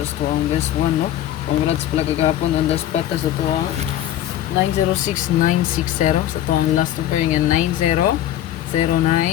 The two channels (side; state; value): right; quieter; 12.3 dB